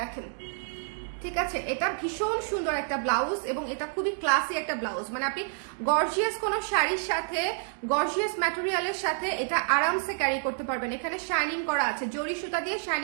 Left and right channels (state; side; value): silent; left; digital silence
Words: ঠিক আছে? এটা ভীষণ সুন্দর একটা ব্লাউজ, এবং এটা খুবই ক্লাসি একটা ব্লাউজ, মানে আপনি গর্জিয়াস কোনো শাড়ির সাথে, গর্জিয়াস ম্যাটেরিয়ালের সাথে এটা আরামসে ক্যারি করতে পারবেন। এখানে শাইনিং করা আছে, জরি সুতা দিয়ে